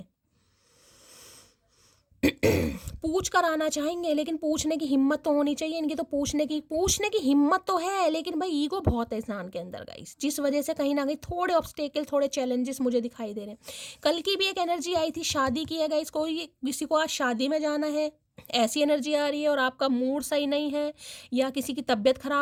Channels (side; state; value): both; identical; correlation 1.00